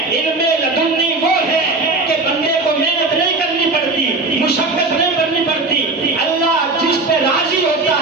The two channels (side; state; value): left; quieter; 3.3 dB